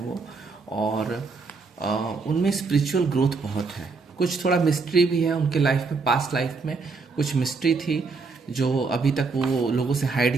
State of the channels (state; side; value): quieter; left; 4.4 dB